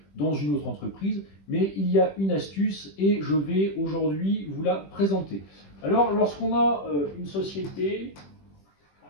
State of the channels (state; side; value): late; right; 20 ms